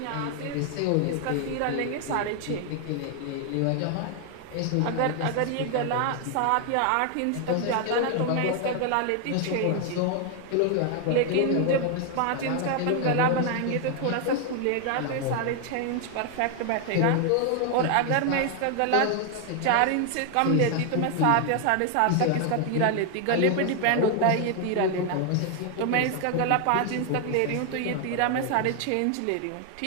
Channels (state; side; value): different; both; correlation 0.00